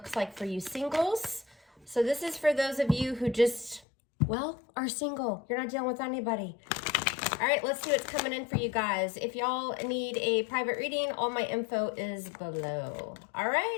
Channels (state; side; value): drops out; right; at 3.9 s